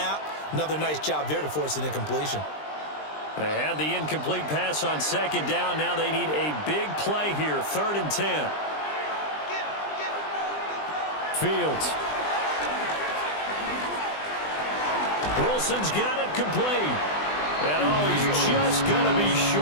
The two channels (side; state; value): right; late; 20 ms